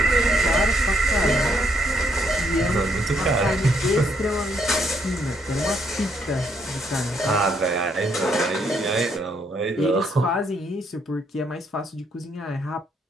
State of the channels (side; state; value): both; normal; correlation 0.72